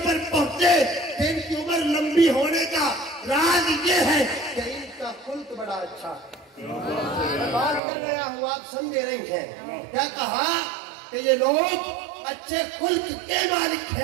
पहुंचे कि इनकी उम्र लंबी होने का राज ये है कि इनका खुल्क बड़ा अच्छा है। मैं बात कर रहा हूँ, आप समझे रही हैं। क्या कहा कि ये लोग अच्छे खुल्क के मालिक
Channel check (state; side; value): drops out; left; at 7.8 s